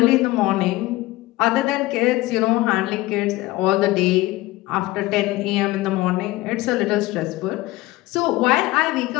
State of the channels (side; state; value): right; quieter; 18.5 dB